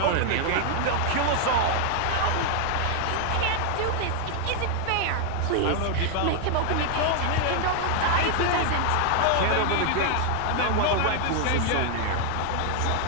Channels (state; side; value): different; both; correlation 0.00